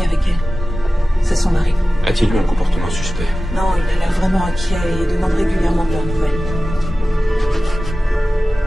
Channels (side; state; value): both; normal; correlation 0.96